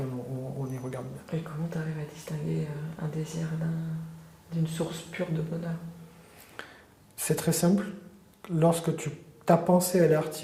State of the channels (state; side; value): identical; both; correlation 1.00